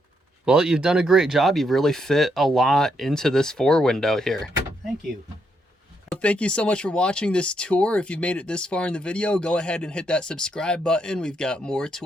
Well, you've done a great job. You've really fit a lot into this 4-window here. Thank you. Well, thank you so much for watching this tour. If you've made it this far in the video, go ahead and hit that subscribe button. We've got more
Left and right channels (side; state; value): both; normal; correlation 0.77